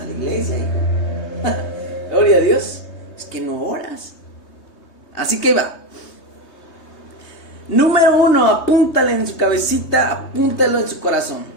la iglesia, hijo. Gloria a Dios. Es que no oras. Así que va. Número 1, apúntale en su cabecita, apúntalo en su corazón.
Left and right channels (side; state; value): right; late; 3.2 ms